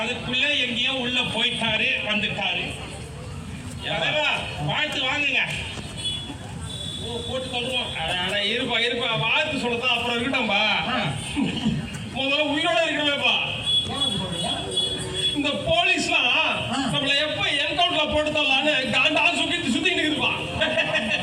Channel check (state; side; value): identical; both; correlation 1.00